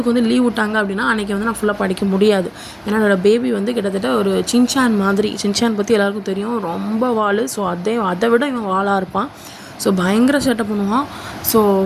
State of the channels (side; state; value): both; identical; correlation 1.00